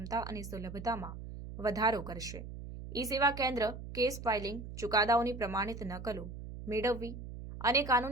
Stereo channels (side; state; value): right; noise; hum, 10 dB below the sound